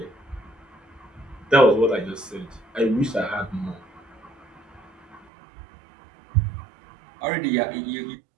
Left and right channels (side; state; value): left; drops out; at 5.2 s